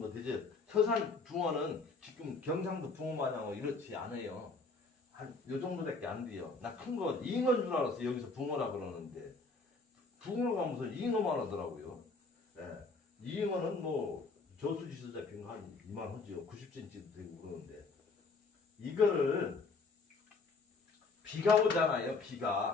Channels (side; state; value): right; quieter; 3.9 dB